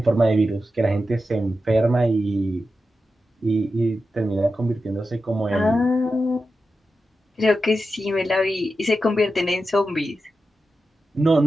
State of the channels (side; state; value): both; normal; correlation 0.91